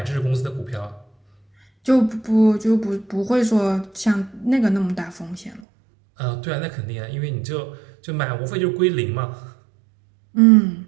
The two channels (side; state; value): left; drops out; at 5.6 s